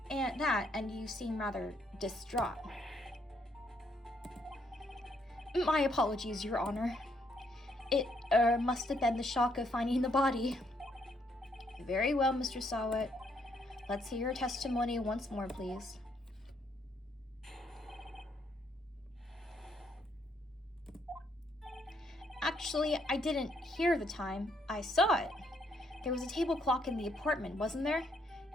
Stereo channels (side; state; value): both; normal; correlation 0.72